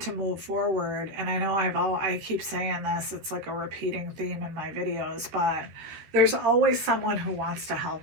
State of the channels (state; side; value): late; left; 13 ms